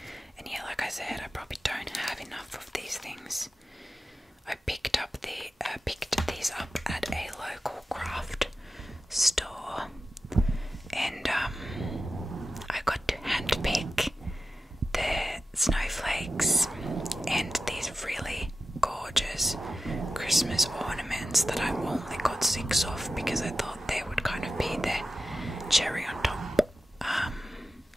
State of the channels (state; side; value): normal; both; correlation 0.93